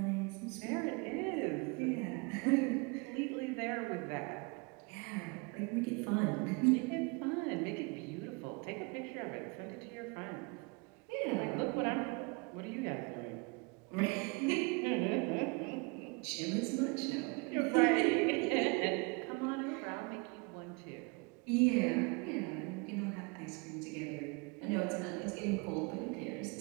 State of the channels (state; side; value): quieter; left; 30.0 dB